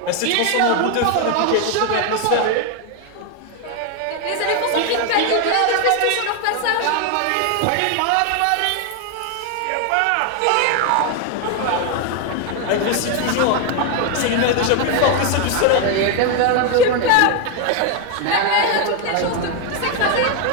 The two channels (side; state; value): both; different; correlation 0.01